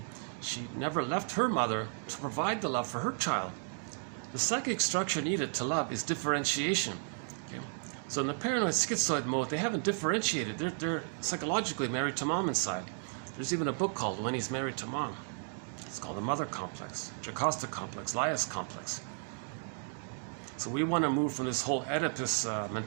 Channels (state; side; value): silent; left; 55 dB below the other